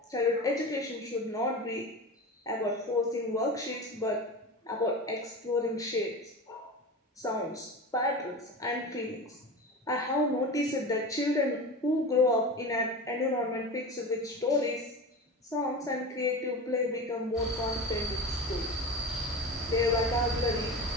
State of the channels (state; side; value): normal; both; correlation 0.29